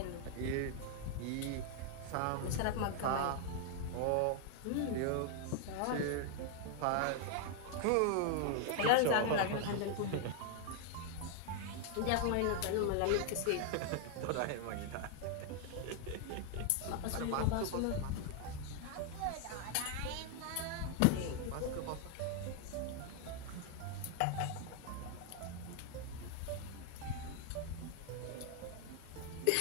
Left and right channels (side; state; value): both; different; correlation 0.00